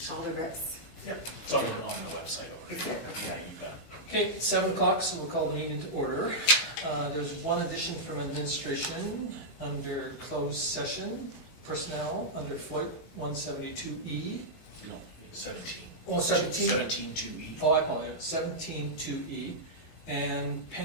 all the reps? Yep, it's on the website already. Is it? Yeah, you bet. Okay, 7 o'clock, so we'll call the meeting to order. There's one addition from administration under closed session, personnel under Floyd 172E. No, 17. Oh, 17? 17-2E. Oh, I apologize, 17.2E. And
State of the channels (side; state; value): right; late; 18 ms